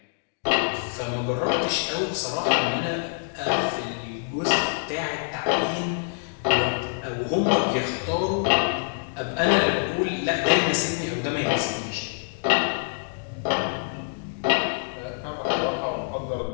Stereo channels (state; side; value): silent; right; digital silence